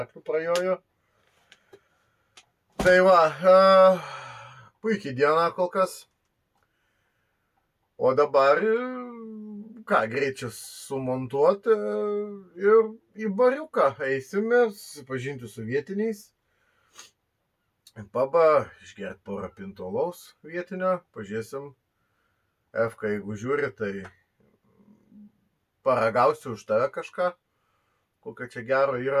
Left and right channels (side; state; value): both; identical; correlation 1.00